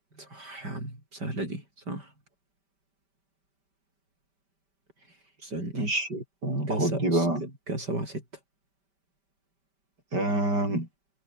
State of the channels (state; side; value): late; left; 5.1 ms